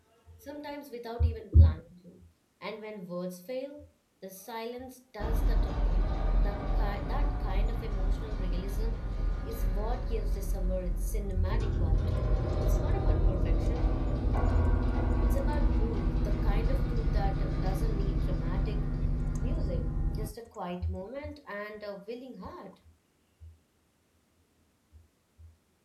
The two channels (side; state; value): both; identical; correlation 1.00